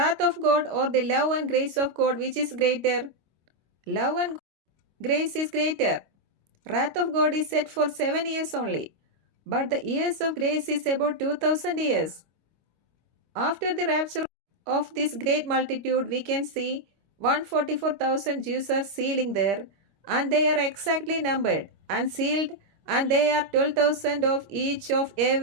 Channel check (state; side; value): late; left; 25 ms